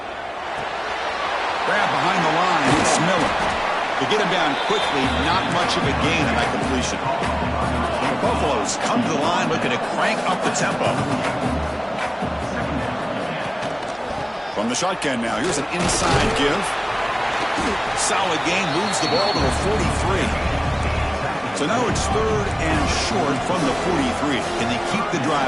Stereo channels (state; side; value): identical; both; correlation 1.00